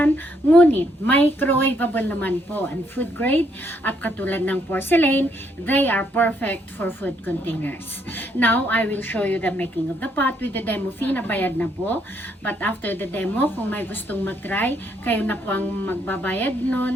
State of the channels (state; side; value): normal; both; correlation 0.72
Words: ngunit microwavable naman po and food grade at katulad ng porcelain, they are perfect for food containers. Now, I will show you the making of the pot with the demo fee na bayad na po. But after the demo, kung may gustong mag-try, kayo na po ang magbabayad